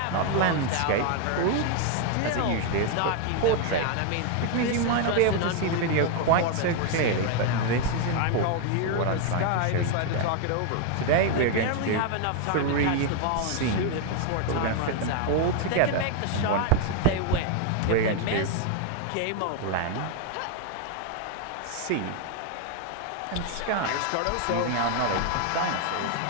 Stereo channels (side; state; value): both; different; correlation 0.00